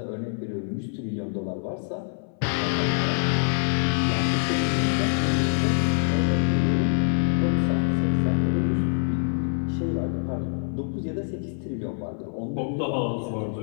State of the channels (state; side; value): silent; right; 58 dB below the other